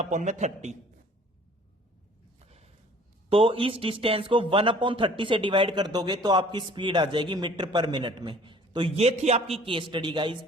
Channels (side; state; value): both; normal; correlation 0.52